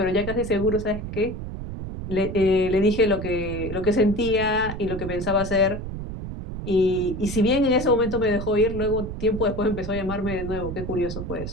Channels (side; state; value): right; noise; rumble, 7 dB below the sound